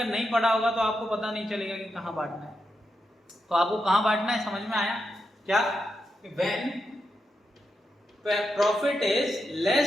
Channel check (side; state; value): both; normal; correlation 0.86